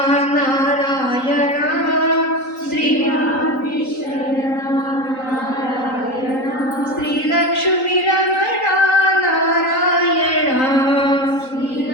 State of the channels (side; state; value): right; late; 3.8 ms